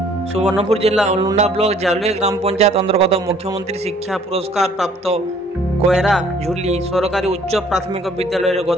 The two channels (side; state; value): both; normal; correlation 0.58